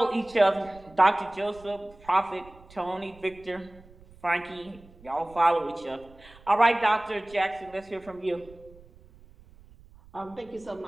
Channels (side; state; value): right; noise; rumble, 24 dB below the sound